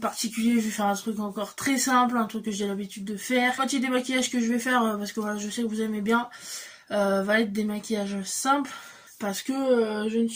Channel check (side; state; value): both; identical; correlation 1.00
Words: particulier, je vais faire un truc encore très simple, un truc que j'ai l'habitude de faire. La moitié des maquillages que je vais faire, parce que voilà, je sais que vous aimez bien, va être des maquillages simples, parce que je ne